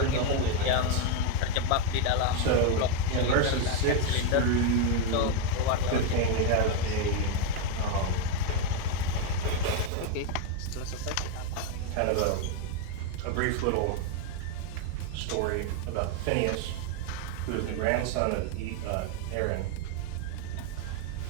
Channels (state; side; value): different; both; correlation 0.02